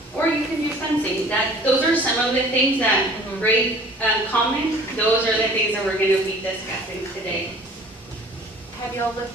or you can use fencing. Those are some of the things that great comment. Those are the things that we're going to be discussing today. Have y'all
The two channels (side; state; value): both; normal; correlation 0.49